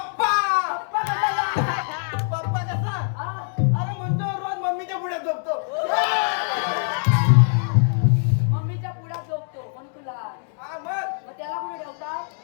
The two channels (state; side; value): silent; right; 63 dB below the other